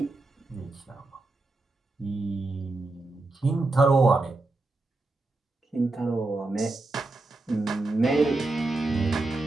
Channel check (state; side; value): quieter; left; 3.1 dB